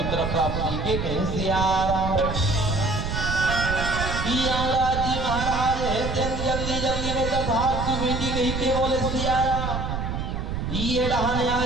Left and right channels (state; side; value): noise; right; rumble, 3 dB below the sound